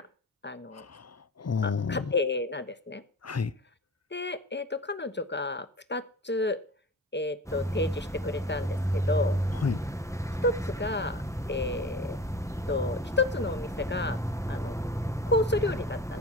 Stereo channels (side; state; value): both; normal; correlation 0.37